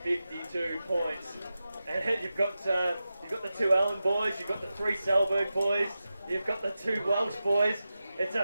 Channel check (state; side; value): inverted; both; correlation -0.92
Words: 52 points. And you've got the 2 Allen boys, you've got the 3 Selberg boys, you've got the 2 Welsh boys. It's